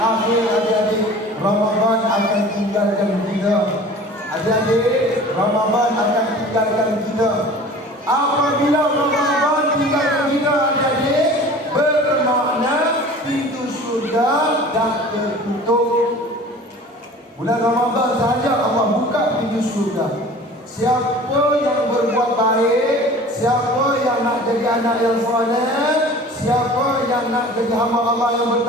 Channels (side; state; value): both; normal; correlation 0.43